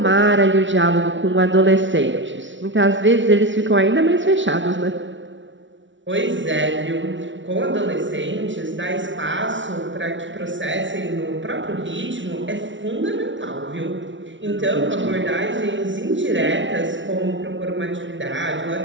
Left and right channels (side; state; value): left; late; 0.55 ms